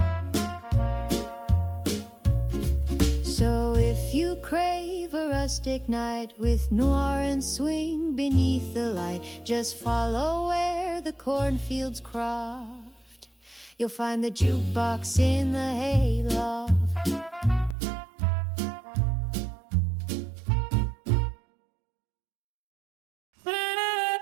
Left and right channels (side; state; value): left; drops out; at 17.8 s